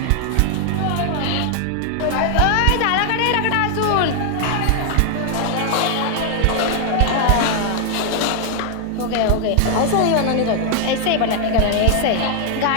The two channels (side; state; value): both; different; correlation 0.00